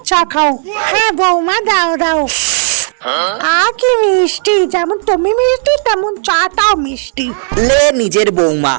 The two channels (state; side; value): silent; left; digital silence